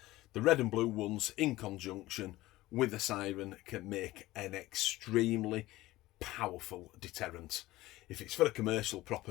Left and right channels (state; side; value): quieter; right; 17.7 dB